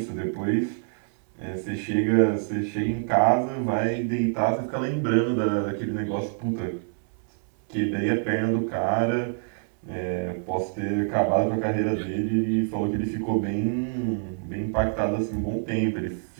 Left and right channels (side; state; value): left; silent; digital silence